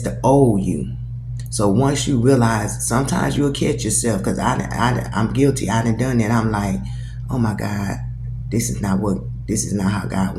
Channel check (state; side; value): identical; both; correlation 1.00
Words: old you. So once you realize, sometimes you'll catch yourself, because I'm guilty. I done that. I'm like, oh my God, this is not how God